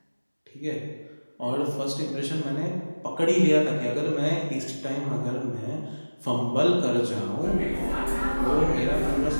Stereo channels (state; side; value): inverted; both; correlation -1.00